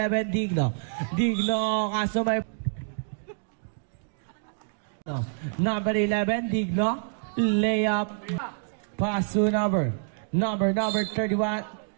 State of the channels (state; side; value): silent; left; digital silence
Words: Digno. Digno, kaso may... Number 11, Digno. Layup. Pass to number 31.